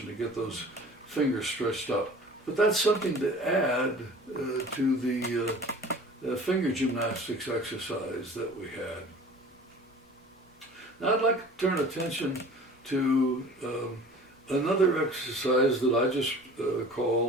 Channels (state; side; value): normal; both; correlation 0.44